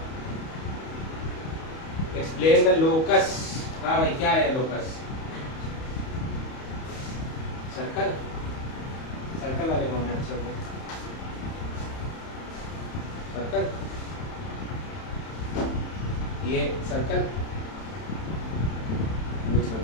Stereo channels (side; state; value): right; late; 31 ms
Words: Explain the locus. हाँ भाई, क्या है लोकस? सर्कल। सर्कल वाले कौन है? सर्कल, ये सर्कल कुछ